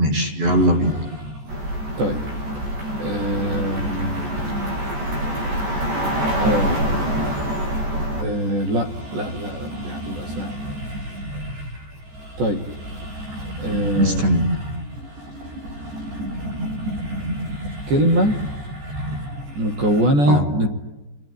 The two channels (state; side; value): late; left; 14 ms